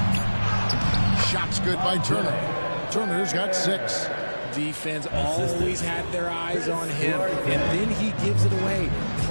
Shot's good by Turner. Turner's got 6. Defense always had their eyes on him, and then he gives it away.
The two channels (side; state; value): both; inverted; correlation -1.00